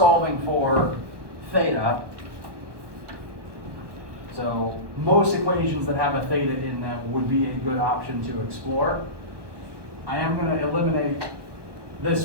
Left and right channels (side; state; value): left; late; 1.2 ms